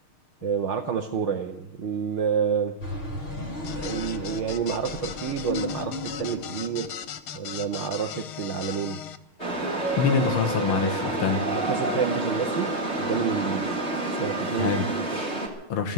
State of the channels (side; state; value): right; late; 6.5 ms